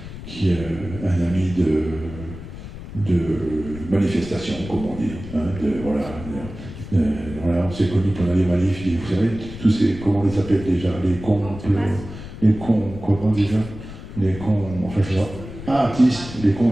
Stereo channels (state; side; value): noise; left; rumble, 12 dB below the sound